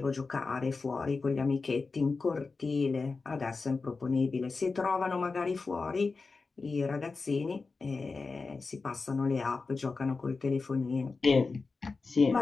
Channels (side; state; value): right; quieter; 4.2 dB